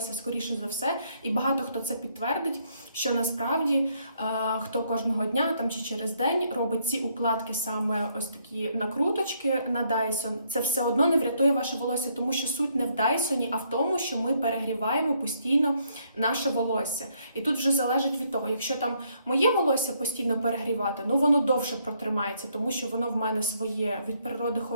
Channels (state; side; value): inverted; both; correlation -0.71